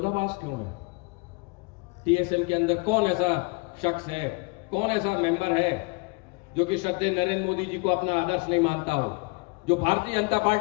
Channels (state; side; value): quieter; right; 29.3 dB